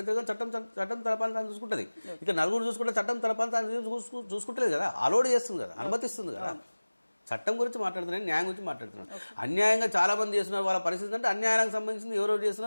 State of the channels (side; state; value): both; inverted; correlation -1.00